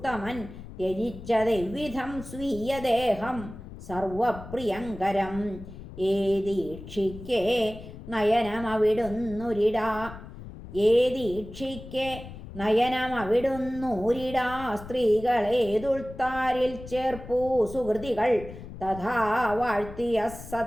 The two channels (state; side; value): noise; left; rumble, 13 dB below the sound